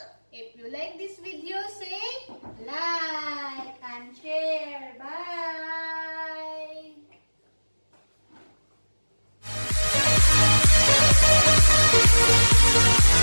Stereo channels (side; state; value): both; inverted; correlation -1.00